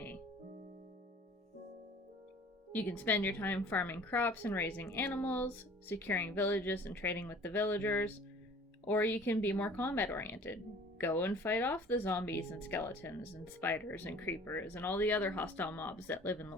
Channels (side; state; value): both; normal; correlation 0.49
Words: You can spend your time farming crops and raising animals, securing villages and trading with the villagers, or you can be more combat oriented. Go and fight off the zombies and skeletons and spiders and creepers and all the other hostile mobs that live in the